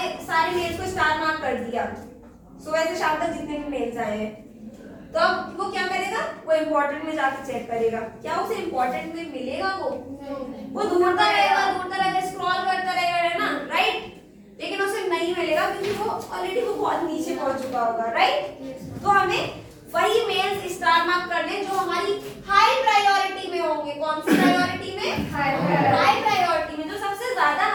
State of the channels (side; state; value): both; identical; correlation 1.00